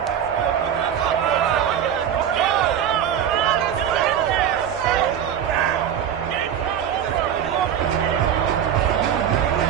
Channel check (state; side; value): quieter; left; 9.1 dB